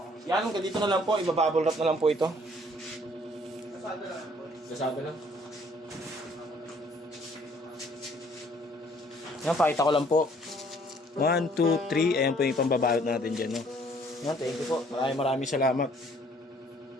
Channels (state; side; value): normal; both; correlation 0.60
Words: Yan, hanggang dito na lang po. Ibabubble wrap na lang po ito. Kasada lang. Kasada lang. Yan, pakita ko lang po. 1, 2, 3. Ayan po yung pambabalot natin dyan, no? Yan, thank you po. Maraming salamat.